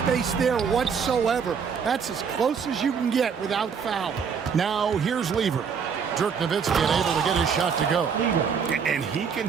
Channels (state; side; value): quieter; left; 6.5 dB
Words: there whatsoever. That's as close as you can get without foul. Now here's Lever. Dirk Nowitzki able to get his shot to go. And he can